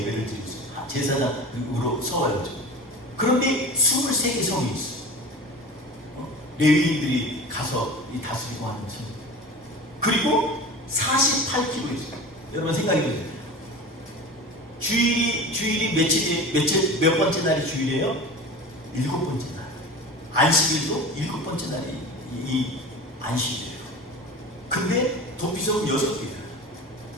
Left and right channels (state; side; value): normal; both; correlation 0.33